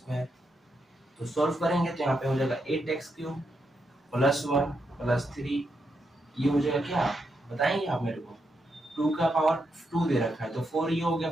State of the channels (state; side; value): normal; both; correlation 0.82